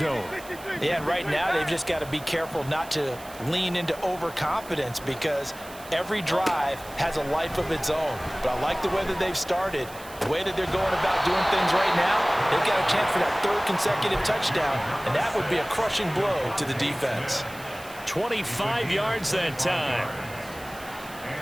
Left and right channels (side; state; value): right; noise; hiss, 18 dB below the sound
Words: Yeah, and right now they've just got to be careful not to lean into overconfidence, because every drive has a life of its own. But I like the way that they've started, the way that they're going about doing things right now. They've got a chance for that 3rd consecutive touchdown, and that would be a crushing blow to the defense. 25 yards that time.